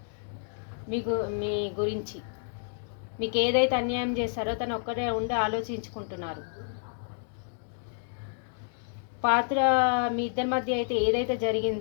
మీ గురించి. మీకు ఏదైతే అన్యాయం చేశారో తను ఒక్కడే ఉండి ఆలోచించుకుంటున్నారు. పాత్ర మీ ఇద్దరి మధ్య అయితే ఏదైతే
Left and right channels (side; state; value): right; silent; digital silence